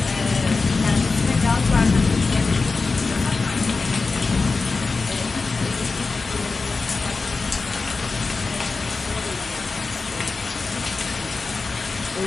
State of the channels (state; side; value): quieter; right; 4.0 dB